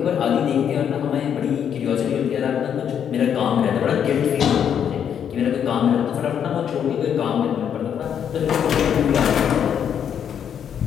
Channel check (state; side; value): quieter; right; 8.5 dB